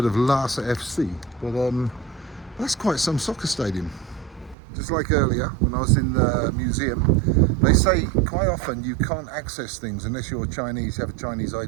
Lhasa FC, but that's quite some soccer stadium. Just like earlier when I was in the museum, they say quite often you can't access things unless you're Chinese, you have a Chinese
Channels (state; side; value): drops out; left; at 4.5 s